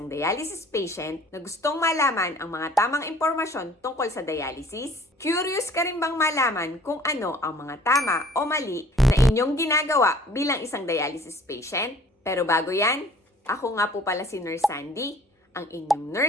dialysis patient na gustong malaman ang mga tamang impormasyon tungkol sa dialysis? Curious ka rin bang malaman kung ano ang mga tama o mali na inyong ginagawa bilang isang dialysis patient? Pero bago yan, ako nga po pala si Nurse Sandy, ang inyong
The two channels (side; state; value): both; normal; correlation 0.53